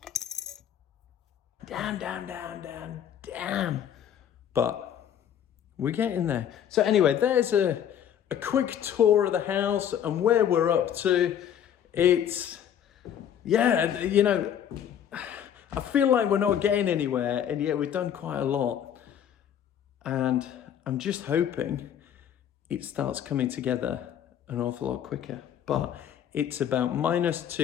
But we're getting there. So anyway, there's a quick tour of the house and where we're up to. It's, yeah, you know, I feel like we're not getting anywhere, and yet we've done quite a lot. And I'm just hoping it starts coming together an awful lot quicker. But it's about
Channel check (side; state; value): right; quieter; 9.5 dB